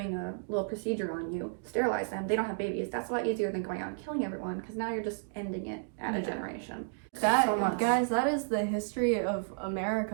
a little procedure on you, sterilize them, they don't have babies. That's a lot easier than going out and killing everyone, because now you're just ending it at a generation. That, so much. guys, that is the history of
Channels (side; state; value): left; silent; digital silence